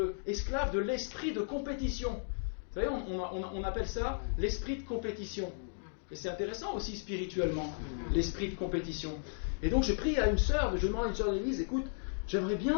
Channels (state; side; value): silent; right; digital silence